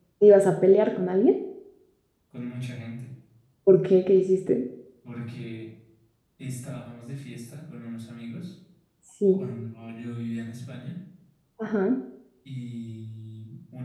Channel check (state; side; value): identical; both; correlation 1.00